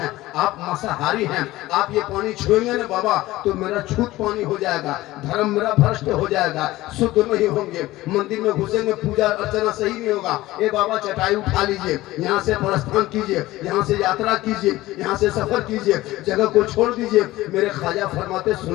आप मांसाहारी हैं, आप ये पानी छुएंगे ना बाबा तो मेरा छूत पानी हो जाएगा, धर्म मेरा भ्रष्ट हो जाएगा, शुद्ध नहीं होंगे, मंदिर में घुसेंगे, पूजा अर्चना सही नहीं होगा। ए बाबा चटाई उठा लीजिए, यहाँ से प्रस्थान कीजिए, यहाँ से यात्रा कीजिए, यहाँ से सफर कीजिए, जगह को छोड़ दीजिए। मेरे ख्वाजा फरमाते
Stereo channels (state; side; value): quieter; right; 17.3 dB